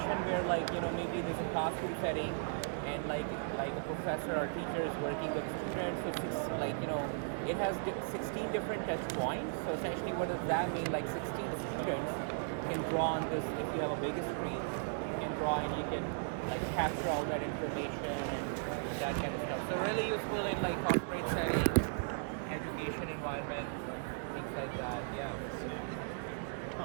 where like, you know, maybe there's a classroom setting and like a professor or teacher is working with students. So it has 16 different touch points. So essentially what does that mean? Like 16 students can draw on this. If you have a bigger screen, you can draw and you can like capture all that information and that kind of stuff. So really useful in like corporate setting, education environment, things like that. Yeah.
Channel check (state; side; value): silent; left; digital silence